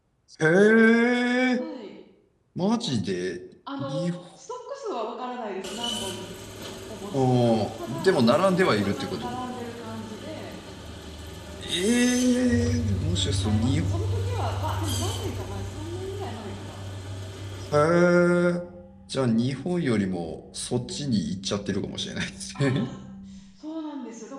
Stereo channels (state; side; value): identical; both; correlation 1.00